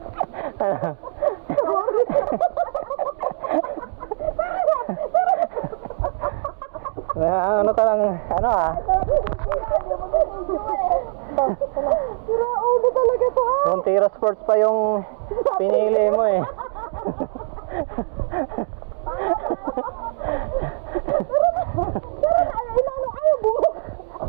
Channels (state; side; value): silent; left; 64 dB below the other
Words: Ano ka lang, ano ah? Sarap yung video yan. Yung mag-video eh. Sira ulo talaga to eh. Montero Sports pa yung pinili mo eh. Tara na, inano ayaw bumuk.